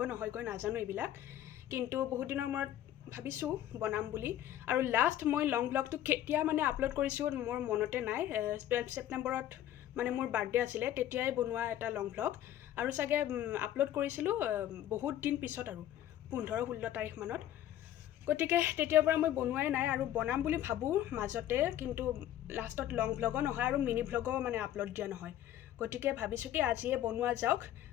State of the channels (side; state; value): right; quieter; 12.1 dB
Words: নহয়গৈ, নাজানো এইবিলাক। কিন্তু বহুদিনৰ মূৰত ভাবিছোঁ বনাম বুলি। আৰু লাষ্ট মই লং ভ্লগটো কেতিয়া আপলোড কৰিছোঁ মোৰ মনতে নাই। 12 ছেপ্টেম্বৰত মোৰ বাৰ্থডে আছিলে, তেতিয়াই বনোৱা এটা লং ভ্লগ। আৰু চাগে আপলোড কৰিছিলোঁ বহুত দিন পিছত, আৰু 15-16 তাৰিখমানত। গতিকে তেতিয়াৰ পৰা মই বনোৱাই নাই, আৰু বনাম বুলি ভাবোঁ মাজতে, কিন্তু লাষ্টত লং ভ্লগো নহয় আৰু মিনি ভ্লগো আপলোড দিয়া নহয়। গতিকে ভাবিছোঁ কি আজিয়ে বনোৱা যাওক।